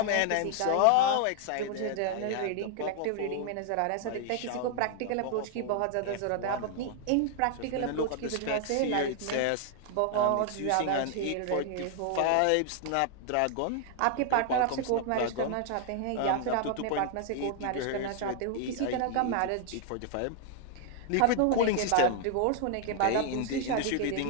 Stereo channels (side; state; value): both; different; correlation 0.00